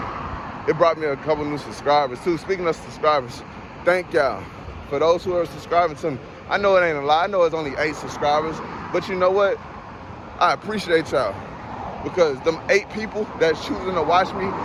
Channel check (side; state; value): both; identical; correlation 1.00